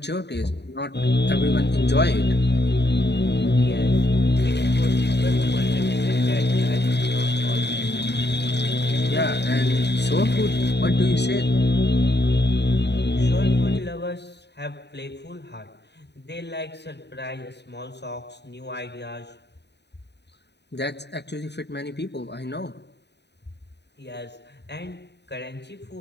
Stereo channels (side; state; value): right; late; 0.50 ms